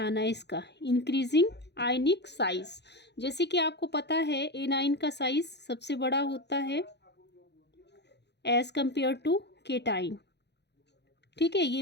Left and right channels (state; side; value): late; right; 0.50 ms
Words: है इसका, इंक्रीजिंग आयनिक साइज। जैसे कि आपको पता है एनाइन का साइज सबसे बड़ा होता है एज कंपेयर टू केटाइन। ठीक है,